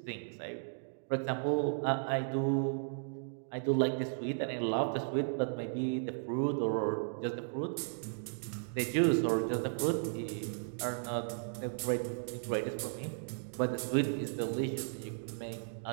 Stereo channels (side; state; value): left; silent; digital silence